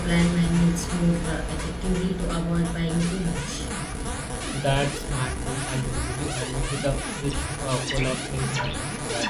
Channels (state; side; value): identical; both; correlation 1.00